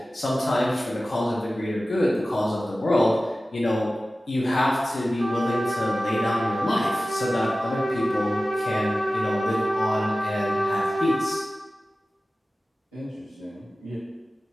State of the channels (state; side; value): normal; both; correlation 0.96